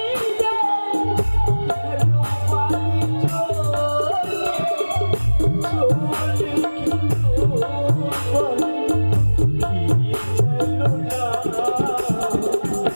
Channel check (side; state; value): both; inverted; correlation -1.00